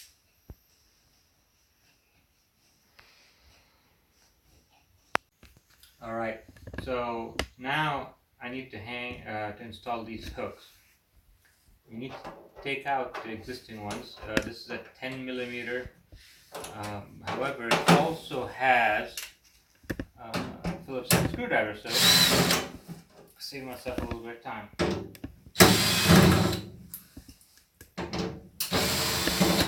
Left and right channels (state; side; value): identical; both; correlation 1.00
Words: Alright, so now I need to install these hooks. We need to take out the existing ones. This is a 10 millimeter. However, it also has a Phillips head screwdriver, so save myself a little bit of time.